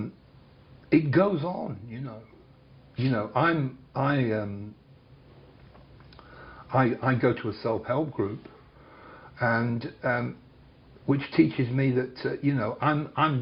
it goes on. You know, I go to a self-help group, and which teaches me that you know, I'm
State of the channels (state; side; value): identical; both; correlation 1.00